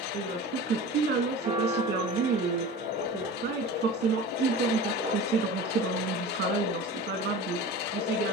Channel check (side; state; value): both; normal; correlation 0.35